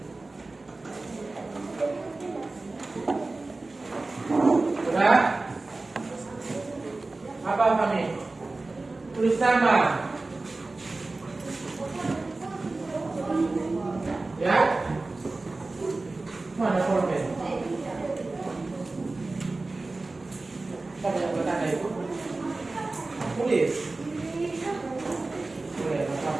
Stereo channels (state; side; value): quieter; left; 3.3 dB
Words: Sudah? Apa kami? Tulis nama. Ya? Mana pulpen? Apa yang bertanda itu? Tulis. Boleh,